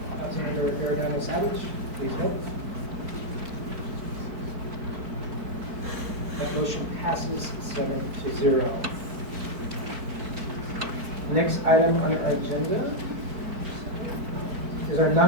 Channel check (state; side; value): late; left; 4.5 ms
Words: Councilmember Arredondo Savage. Please vote. That motion passes 7-0. Next item on our agenda is our